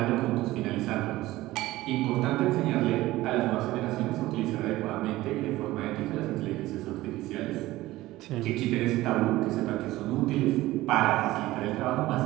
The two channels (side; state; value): left; quieter; 17.3 dB